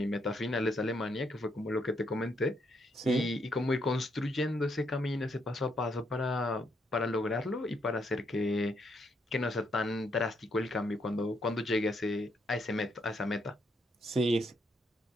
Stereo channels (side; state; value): both; normal; correlation 0.75